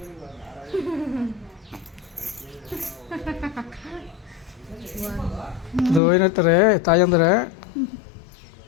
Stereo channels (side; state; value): right; drops out; at 6.0 s